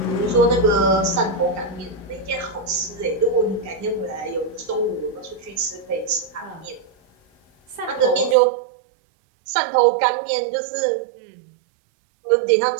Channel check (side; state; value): left; drops out; at 8.3 s